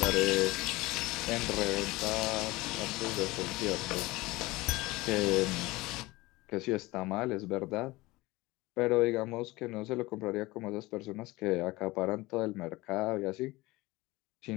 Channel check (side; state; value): right; quieter; 20.8 dB